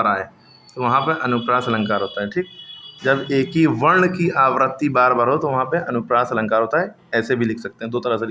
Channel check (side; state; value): both; identical; correlation 1.00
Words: आए तो वहाँ पे अनुप्रास अलंकार होता है। ठीक। जब एक ही वर्ण की आवृत्ति बार बार हो तो वहाँ पे अनुप्रास अलंकार होता है। ऐसे भी लिख सकते हैं, दो तरह से